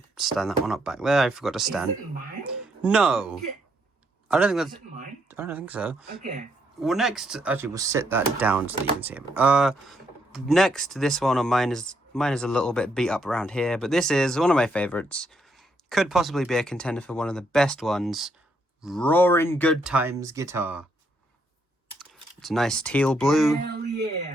stand that one up back there. I forgot to stand. Is it mine? No. I don't think Is that's... it mine? I don't think so. Okay. Well, next... Actually, we'll sit that down so that you can see it. Next, this one on mine is a little bit beat up around here, but this is one of my favourites. Could possibly be a contender for one of the best ones. Roaring Good Times guitar. It's a nice teal blue. Hell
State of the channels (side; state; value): both; normal; correlation 0.75